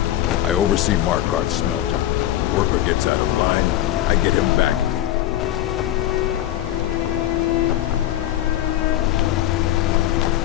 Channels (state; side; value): quieter; right; 13.2 dB